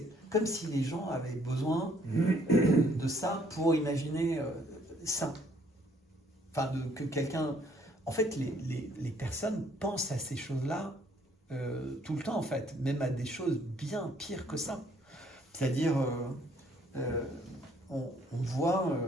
comme si les gens avaient besoin de ça pour imaginer ça. Enfin, que quelqu'un... En fait, les personnes pensent à ces choses-là tout le temps, en fait. Même à des choses bien pires que ça. C'est-à-dire... on voit,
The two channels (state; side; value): normal; both; correlation 0.64